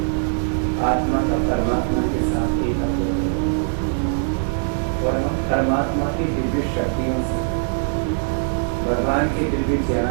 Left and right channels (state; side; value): silent; left; digital silence